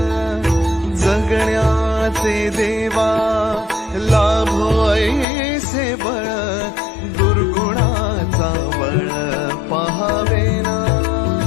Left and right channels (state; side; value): drops out; right; at 5.2 s